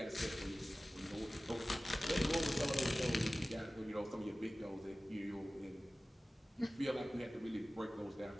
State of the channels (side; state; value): both; normal; correlation 0.97